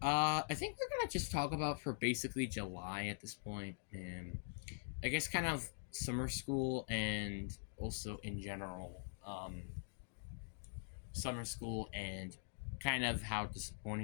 I think we're gonna just talk about for basically July at this point, and I guess kind of summer school and also in general. Summer school and kind of how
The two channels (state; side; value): silent; right; digital silence